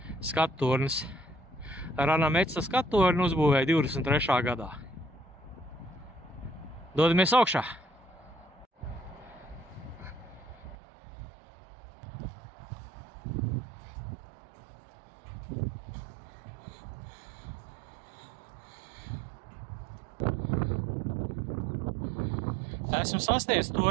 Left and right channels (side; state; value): left; drops out; at 10.8 s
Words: skattornis. Rana Metsa skattorni uzbūvēja 23. gadā. Dodamies augšā! Esmu sasniedzis